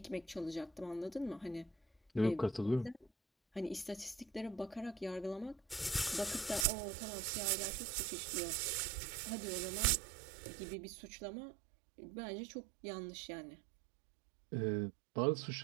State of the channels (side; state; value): left; drops out; at 6.7 s